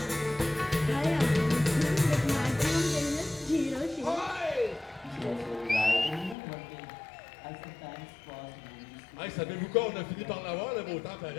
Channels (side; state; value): right; drops out; at 6.4 s